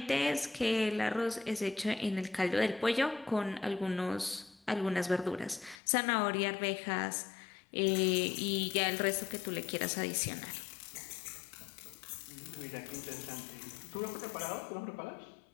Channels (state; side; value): drops out; right; at 5.8 s